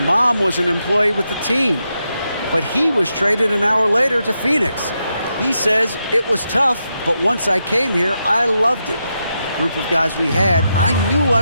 was an employee with the team. But he was traded an hour later to Phoenix. He says, it was tough, but once I came here, I loved it. Group of guys we had, I knew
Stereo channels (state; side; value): inverted; both; correlation -0.85